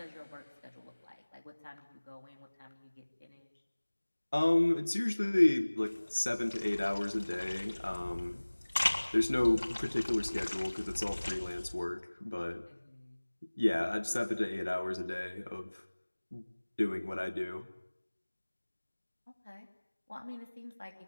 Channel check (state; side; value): inverted; both; correlation -1.00